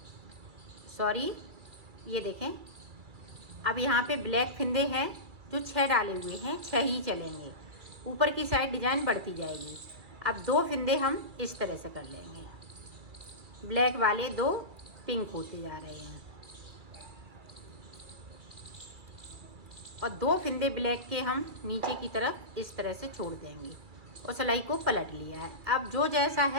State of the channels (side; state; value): left; late; 2.3 ms